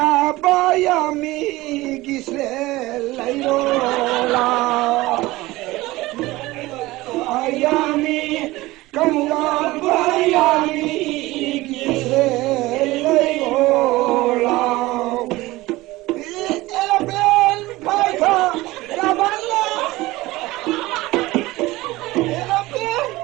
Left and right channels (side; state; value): left; quieter; 19.2 dB